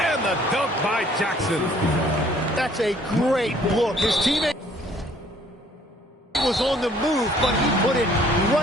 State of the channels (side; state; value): both; normal; correlation 0.59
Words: And the dunk by Jackson. That's a great look. His teammate was on the move, but he put it